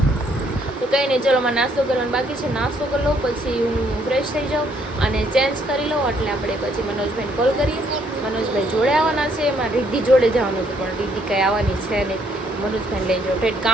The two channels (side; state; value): both; normal; correlation 0.68